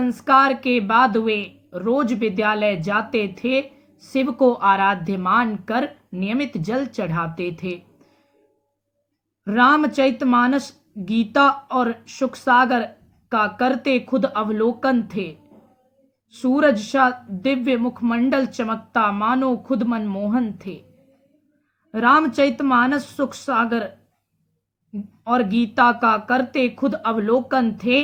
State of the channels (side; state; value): both; identical; correlation 1.00